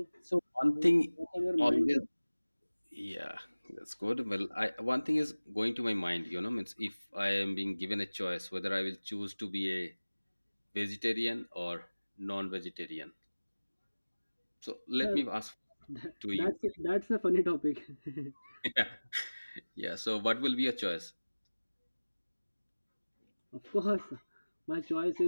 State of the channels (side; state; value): both; inverted; correlation -1.00